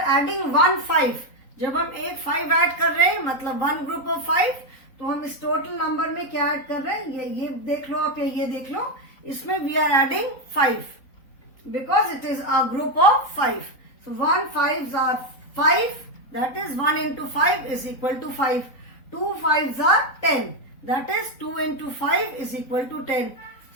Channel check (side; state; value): right; late; 3.9 ms